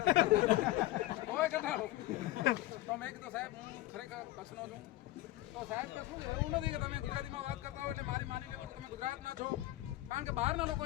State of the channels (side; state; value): right; quieter; 16.4 dB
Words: કોઈ કટાળો તો મેં કીધું સાહેબ હું ખરેખર કચ્છનો છું તો સાહેબ કે શું એવું નથી કે તમે ગુજરાતીમાં વાત કરતા હો એટલે મારી માની લો તમે ગુજરાતના છો કારણ કે બહારના લોકો